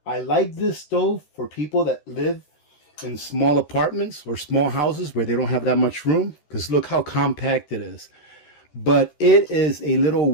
I like this stove for people that live in small apartments or small houses where they don't have that much room, because look how compact it is. But it is a little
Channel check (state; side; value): late; right; 13 ms